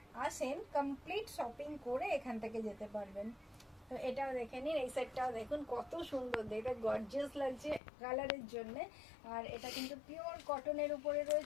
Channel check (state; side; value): drops out; right; at 7.8 s